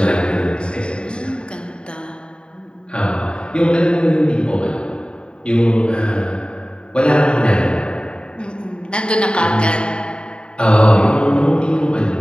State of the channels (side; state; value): right; late; 0.052 ms